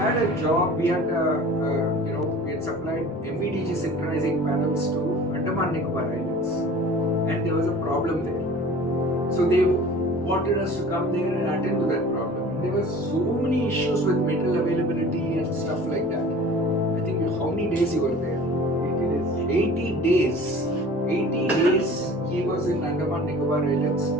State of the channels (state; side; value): normal; both; correlation 0.43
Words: a job, we had supplied MVDG synchronizing panels to Andaman Nicobar Islands, and there was a problem there. So they wanted us to come there and attend to that problem. There were so many issues with metal availability and stuff like that. I think how many days you were there? 80 days. 80 days he was in Andaman Nicobar Islands,